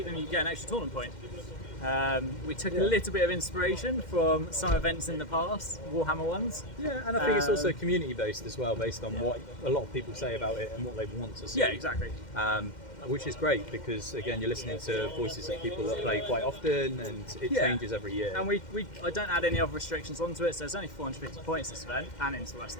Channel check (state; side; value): late; right; 2.1 ms